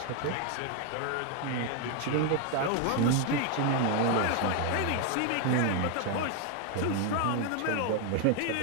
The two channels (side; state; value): both; different; correlation 0.01